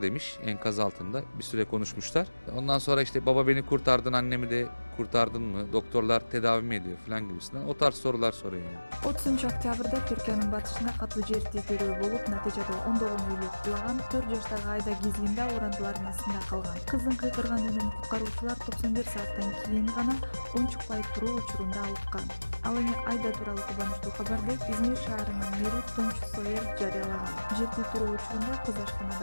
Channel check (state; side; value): inverted; both; correlation -1.00